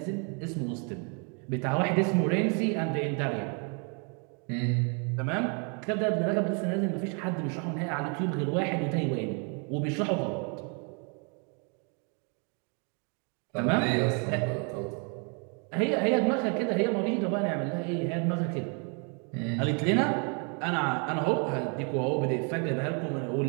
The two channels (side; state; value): left; quieter; 37.1 dB